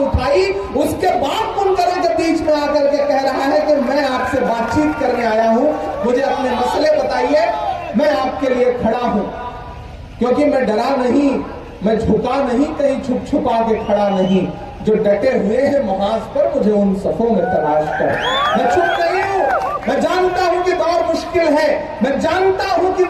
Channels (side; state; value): both; identical; correlation 1.00